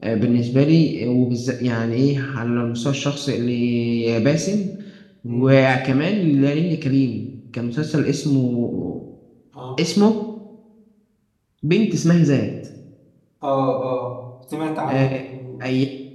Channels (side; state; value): both; identical; correlation 1.00